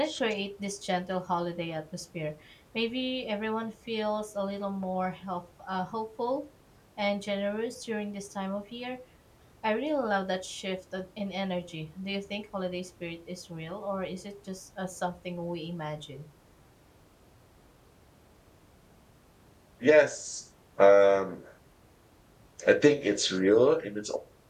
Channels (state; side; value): identical; both; correlation 1.00